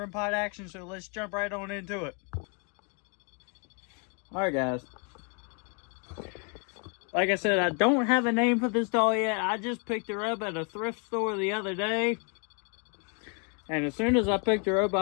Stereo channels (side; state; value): right; quieter; 37.7 dB